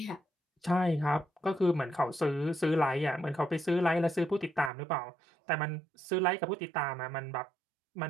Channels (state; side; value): drops out; left; at 4.7 s